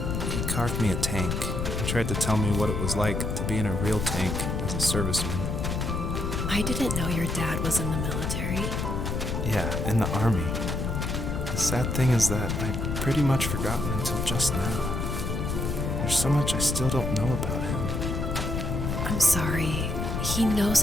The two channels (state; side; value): noise; left; rumble, 2 dB below the sound